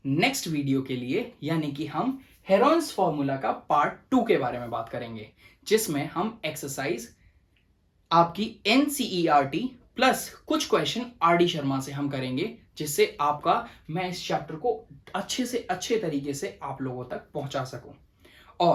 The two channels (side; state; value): both; identical; correlation 1.00